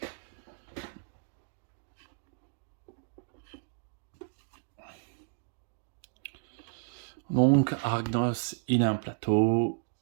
Donc Arachnos, il a un plateau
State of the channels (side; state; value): left; silent; digital silence